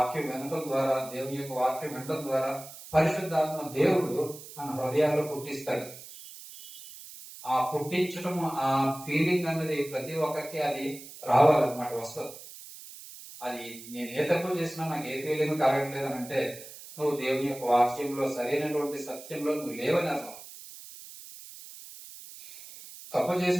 వినటం ద్వారా, దేవుని యొక్క వాక్యం వినటం ద్వారా పరిశుద్ధాత్మ దేవుడు మన హృదయాల్లో పుట్టిస్తాడు. ఆ పుట్టించడం, ఆ ఫీలింగ్ అన్నది ప్రతి ఒక్కరికి అది రావాలన్నమాట, వస్తుంది. అది నేను ఏ తప్పు చేసినా నాకు ఏ ఫీలింగ్ కలగట్లేదు అని అంటే నువ్వు దేవుని యొక్క వాక్యంలో సరైనటువంటి సత్యంలో నువ్వు లేవని అర్థం. తప్పు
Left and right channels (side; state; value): right; noise; hiss, 15 dB below the sound